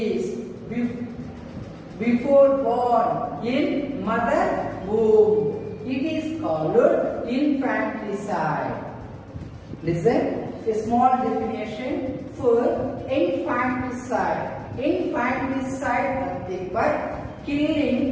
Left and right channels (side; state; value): both; identical; correlation 1.00